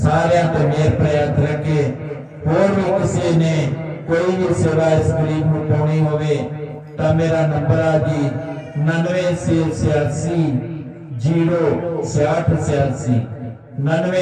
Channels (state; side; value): identical; both; correlation 1.00